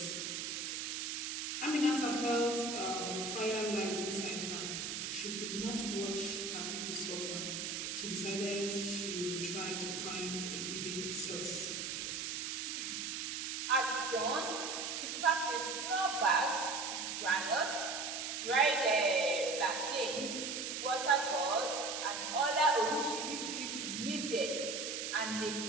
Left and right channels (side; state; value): right; noise; hiss, 3 dB below the sound